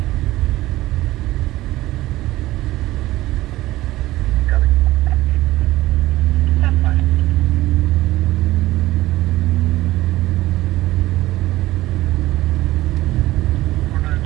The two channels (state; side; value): quieter; left; 16.8 dB